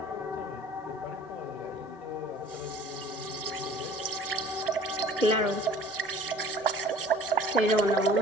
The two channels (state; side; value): normal; both; correlation 0.49